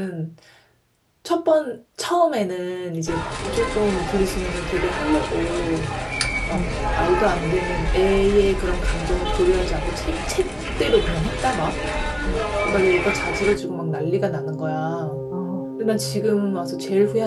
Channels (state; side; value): identical; both; correlation 1.00